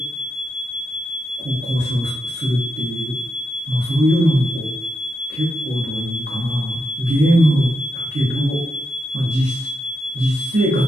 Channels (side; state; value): both; normal; correlation 0.84